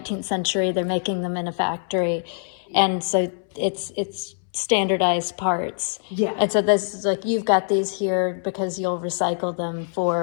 century, they're making them in a factory, and so it's standardized parts. Yeah. And so this is like, you've got these here because you'll recycle them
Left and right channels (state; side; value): silent; right; 63 dB below the other